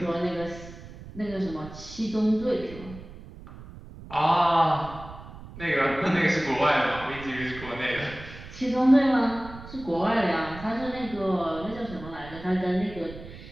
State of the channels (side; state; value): right; noise; rumble, 15 dB below the sound